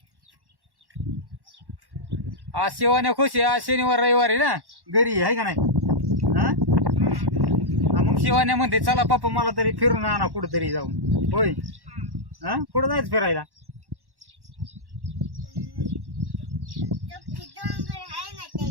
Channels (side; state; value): left; late; 1.1 ms